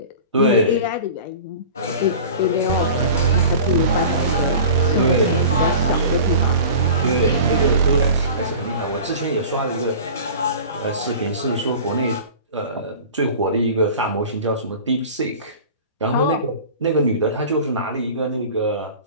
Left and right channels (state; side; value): inverted; both; correlation -0.38